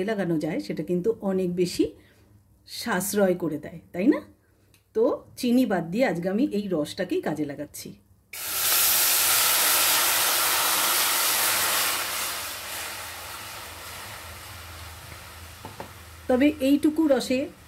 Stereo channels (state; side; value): identical; both; correlation 1.00